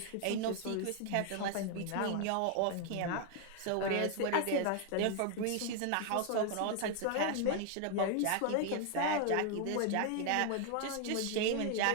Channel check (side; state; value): both; different; correlation 0.01